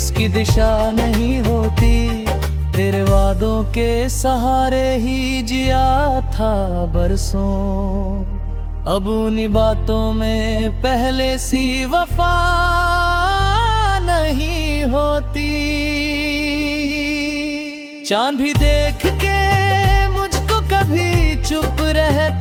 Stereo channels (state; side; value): identical; both; correlation 1.00